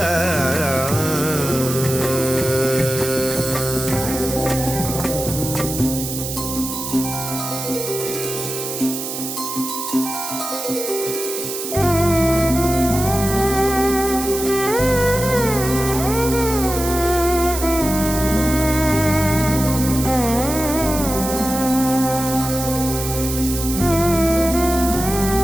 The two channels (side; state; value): right; noise; hiss, 6 dB below the sound